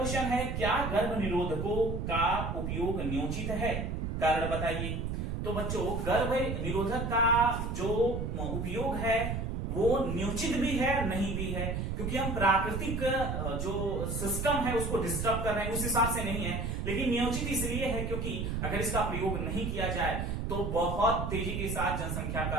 है, क्या गर्भ निरोधकों का उपयोग न्योचित है? कारण बताइए। तो बच्चों गर्भ निरोधक का जो उपयोग है वो न्योचित भी है, नहीं भी है, क्योंकि हम प्राकृतिक जो सिस्टम है उसको डिस्टर्ब कर रहे हैं, उस हिसाब से नहीं है। लेकिन न्योचित इसलिए है क्योंकि अगर इसका प्रयोग नहीं किया जाए तो बहुत तेजी के साथ जनसंख्या का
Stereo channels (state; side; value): noise; right; rumble, 2 dB below the sound